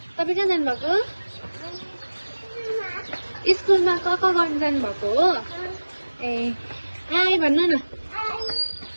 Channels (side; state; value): both; inverted; correlation -1.00